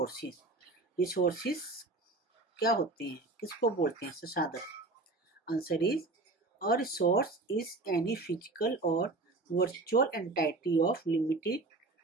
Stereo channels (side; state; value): left; quieter; 3.2 dB